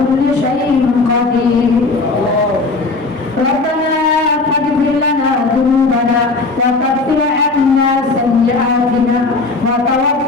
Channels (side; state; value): right; quieter; 3.7 dB